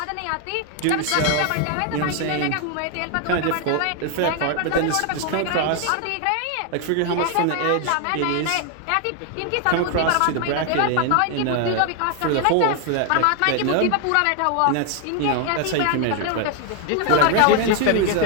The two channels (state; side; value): different; both; correlation 0.01